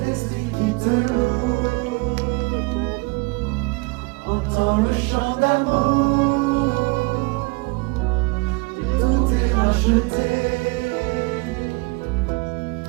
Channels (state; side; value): quieter; left; 28.0 dB